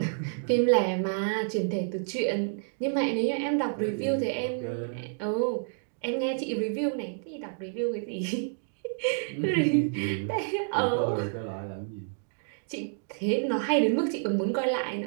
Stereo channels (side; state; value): left; silent; digital silence